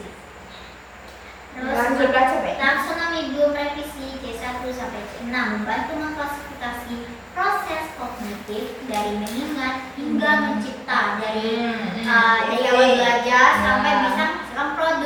membantu mengklasifikasi proses kognitif dari mengingat hingga mencipta dari awal belajar sampai bisa menghasilkan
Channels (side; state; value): both; identical; correlation 1.00